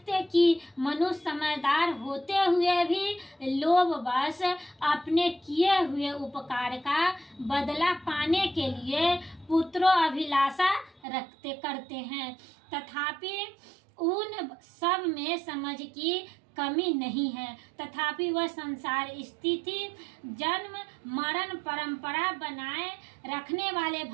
कि मनुष्य समझदार होते हुए भी लोभवश अपने किए हुए उपकार का बदला पाने के लिए पुत्रों अभिलाषा करते हैं, तथापि उन सब में समझ की कमी नहीं है, तथापि वह संसार स्थिति जन्म मरण परंपरा बनाए रखने वाले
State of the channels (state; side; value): drops out; left; at 11.0 s